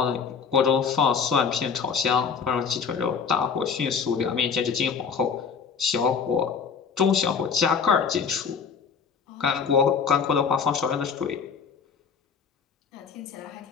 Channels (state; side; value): quieter; right; 6.1 dB